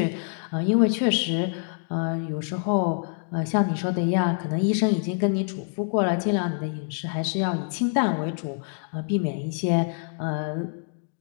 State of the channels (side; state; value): right; silent; digital silence